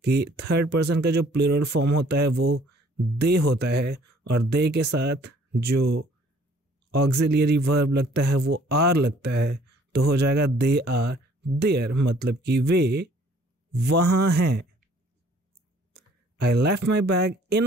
कि थर्ड पर्सन का जो प्लूरल फॉर्म होता है वो दे होता है और दे के साथ जो ऑक्सिलियरी वर्ब लगता है वो आर लगता है, तो हो जाएगा दे आर देयर, मतलब कि वे वहाँ हैं। I left my bag in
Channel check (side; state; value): both; normal; correlation 0.58